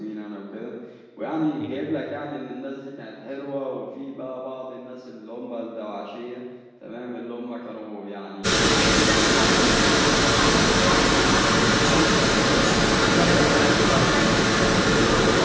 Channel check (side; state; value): both; identical; correlation 1.00